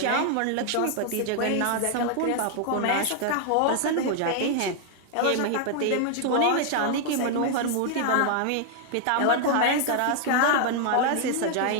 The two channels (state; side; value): different; both; correlation 0.00